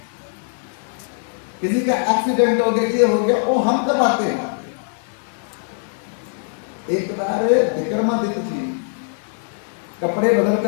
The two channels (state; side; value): silent; right; digital silence